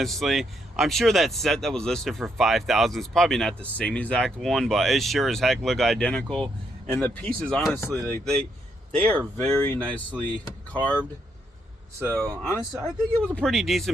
I'm sure that set that was listed for $5,000 is probably not the same exact one, but it sure as heck look identical. And the pieces, honestly, like they are very nicely carved. So honestly, I think it was a pretty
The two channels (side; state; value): both; normal; correlation 0.76